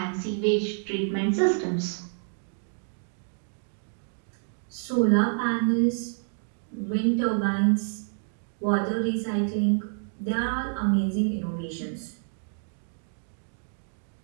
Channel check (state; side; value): silent; left; digital silence